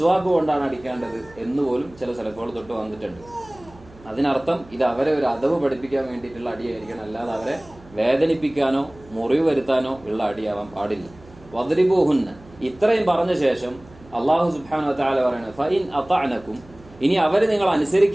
കൊണ്ടാണ് അടിക്കേണ്ടത് എന്നുപോലും ചില സലഫുകൾ തൊട്ട് വന്നിട്ടുണ്ട്. അതിനർത്ഥം ഇത് അവരെ ഒരു അദബ് പഠിപ്പിക്കാൻ വേണ്ടിയിട്ടുള്ള അടിയായിരിക്കണം, അല്ലാതെ അവരെ വേദനിപ്പിക്കാനോ മുറിവ് വരുത്താനോ ഉള്ള അടിയാവാൻ പാടില്ല. വദ്രിബൂഹുന്ന, ഇത്രയും പറഞ്ഞ ശേഷം അള്ളാഹു സുബ്ഹാനഹു വ തആല പറയുന്നത് ഫഇൻ അതഅനകും, ഇനി അവർ നിങ്ങൾ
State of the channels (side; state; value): right; noise; hum, 23 dB below the sound